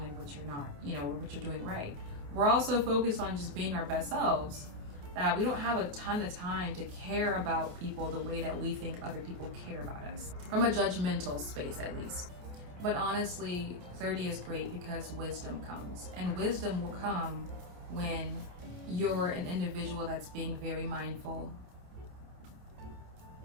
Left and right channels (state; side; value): late; left; 28 ms